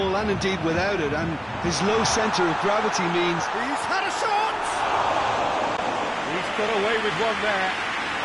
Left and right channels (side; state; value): both; identical; correlation 1.00